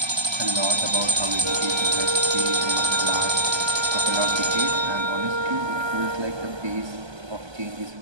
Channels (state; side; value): late; left; 1.3 ms